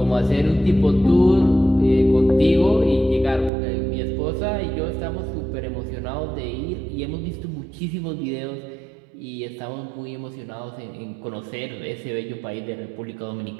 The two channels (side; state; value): left; drops out; at 3.5 s